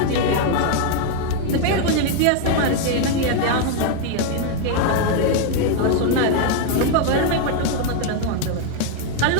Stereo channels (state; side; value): different; both; correlation 0.00